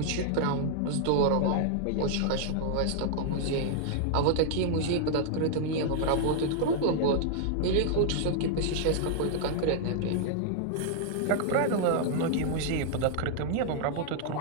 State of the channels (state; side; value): different; both; correlation -0.01